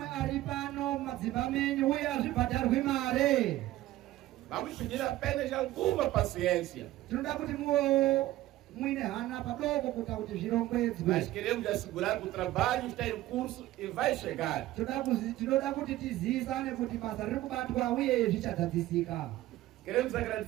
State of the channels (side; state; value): left; quieter; 15.6 dB